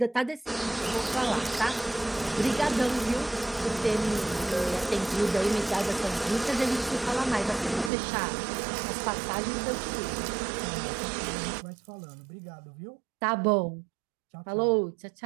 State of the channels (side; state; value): left; drops out; at 7.9 s